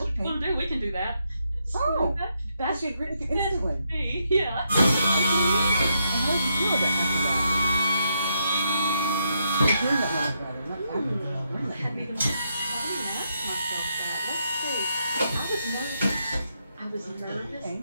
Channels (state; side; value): inverted; both; correlation -0.79